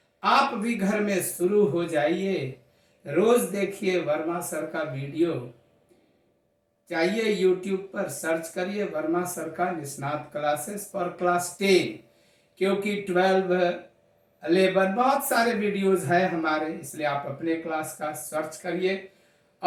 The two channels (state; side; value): identical; both; correlation 1.00